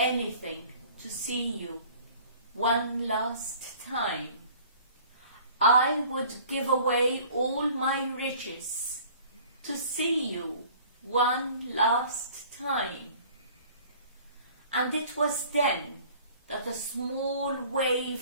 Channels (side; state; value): both; inverted; correlation -0.50